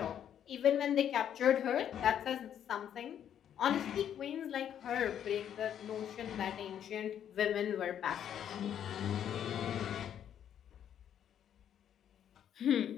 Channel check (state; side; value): quieter; right; 9.6 dB